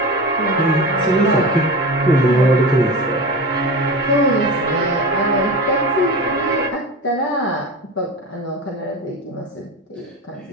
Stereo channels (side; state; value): both; normal; correlation 0.28